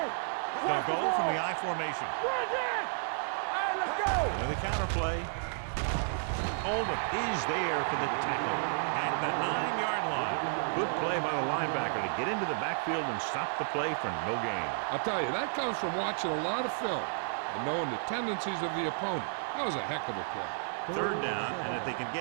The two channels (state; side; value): silent; left; digital silence